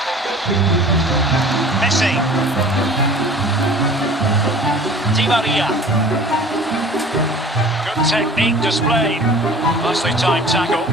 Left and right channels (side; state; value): both; normal; correlation 0.44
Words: Messi. Di Maria. Good technique displayed. Nicely timed tackle.